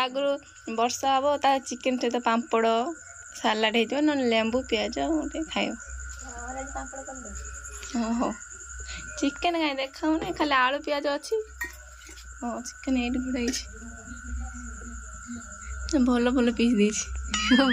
वर्षा हम ता चिकेन सहित पापड़ सालाड हो ना लेंबू पियाज गोटे खाइब हो चिकेन कहीं देखा खाली आलू पियाज अच्छी हाँ चिकेन ये गुड़ाई भल भल पीस दे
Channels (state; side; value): identical; both; correlation 1.00